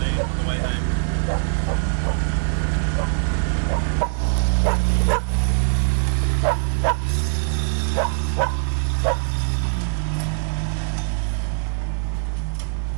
on the way home.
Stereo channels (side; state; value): left; silent; 64 dB below the other